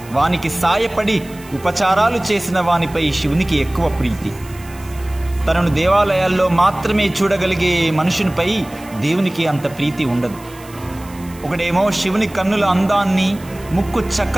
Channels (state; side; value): noise; right; hiss, 22 dB below the sound